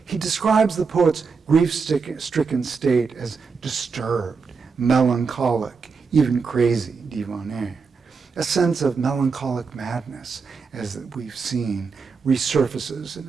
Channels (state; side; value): quieter; left; 5.2 dB